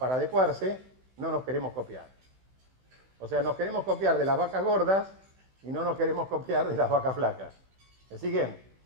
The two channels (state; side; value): late; left; 16 ms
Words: adecuarse, no nos queremos copiar. O sea, nos queremos copiar de las vacas gordas y no nos queremos copiar de las vacas flacas. ¿Me siguen?